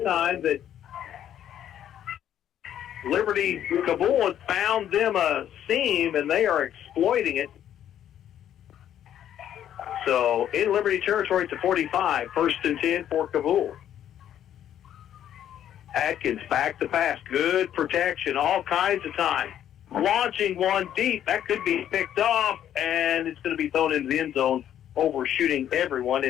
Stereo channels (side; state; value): right; quieter; 10.6 dB